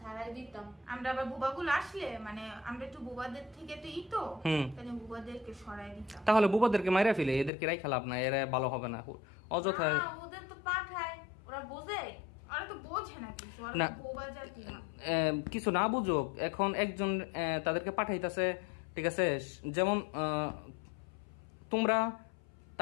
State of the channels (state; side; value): drops out; right; at 7.5 s